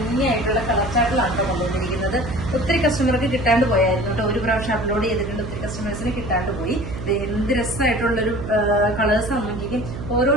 കളർ ചാർട്ടിലാണ് കൊണ്ടുവന്നിരിക്കുന്നത്. ഒത്തിരി കസ്റ്റമർക്ക് കിട്ടാണ്ട് പോയായിരുന്നു കേട്ടോ. ഒരു പ്രാവശ്യം അപ്ലോഡ് ചെയ്തിട്ടുണ്ട്, ഒത്തിരി കസ്റ്റമേഴ്സിന് കിട്ടാണ്ട് പോയി. എന്ത് രസമായിട്ടുള്ളൊരു കളേഴ്സ് നോക്കിക്കും. ഓരോ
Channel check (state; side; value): noise; right; hum, 8 dB below the sound